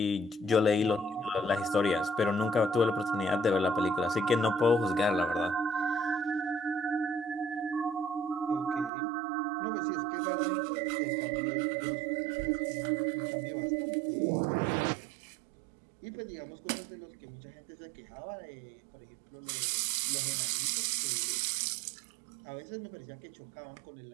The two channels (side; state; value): left; drops out; at 8.9 s